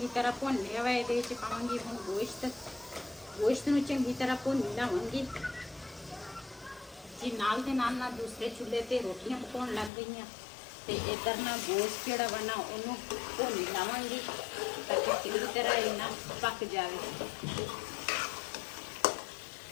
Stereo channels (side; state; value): right; drops out; at 9.9 s